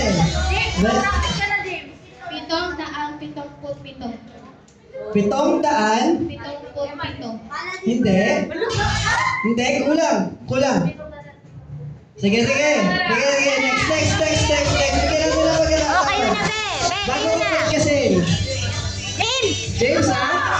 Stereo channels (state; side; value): identical; both; correlation 1.00